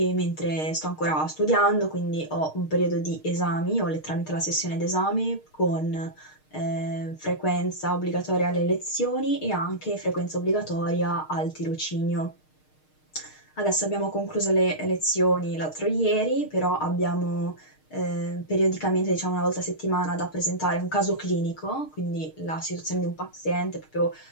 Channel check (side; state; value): right; late; 6.5 ms